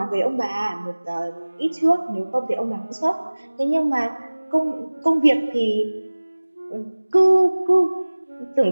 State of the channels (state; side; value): inverted; both; correlation -1.00